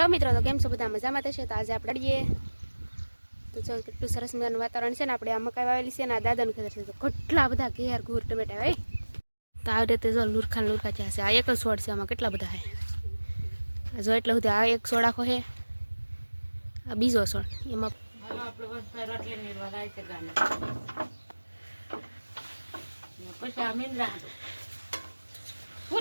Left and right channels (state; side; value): inverted; both; correlation -1.00